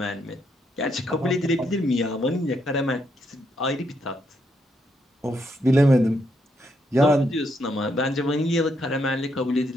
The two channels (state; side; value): normal; both; correlation 0.76